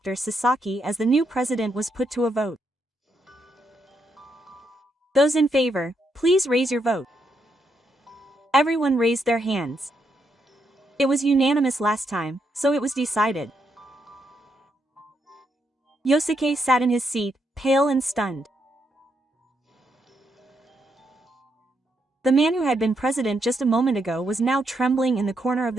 Sasaki as the new president was put to a vote. Those in favor, please raise your vote. Everyone raised their hands. It was unanimous last time, so it was decided. Yosuke sat in his seat, pale and stunned. The man who had been president just a moment ago was now trembling in the corner of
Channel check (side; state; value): both; normal; correlation 0.79